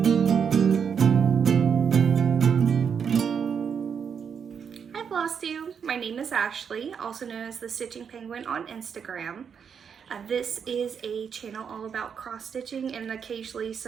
Hi Flosstube. My name is Ashley, also known as the Stitching Penguin on Instagram. This is a channel all about cross stitching and occasionally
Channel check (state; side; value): quieter; left; 7.0 dB